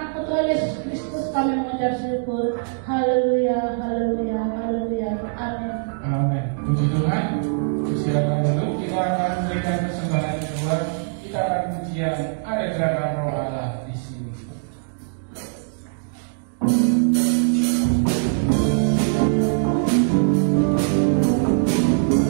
Anak Tuhan Yesus Kristus kami mengucap syukur. Haleluya, haleluya, haleluya. Amin. Amin. Puji Tuhan. Silakan dulu, kita akan memberikan persembahan kedua. Kita akan pujian ada gerakan Roh Allah di sini.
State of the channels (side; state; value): left; silent; digital silence